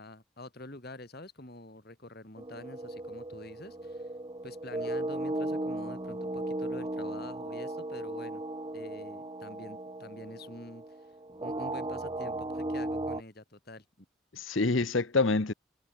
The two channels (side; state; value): both; normal; correlation 0.34